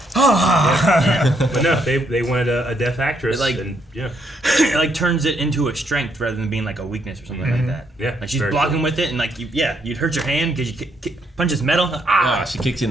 But no, they wanted a deaf actress. It, like- and It like turns it into a strength rather than being like a weakness or something like that. Yeah, Like she's very blocking cool. with it, and like you'd hurt your hand because you punches metal. Ah, she kicks you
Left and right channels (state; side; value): normal; both; correlation 0.74